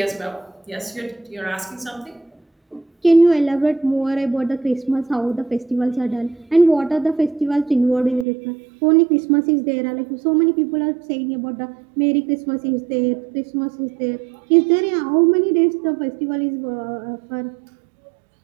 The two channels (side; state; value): left; drops out; at 8.2 s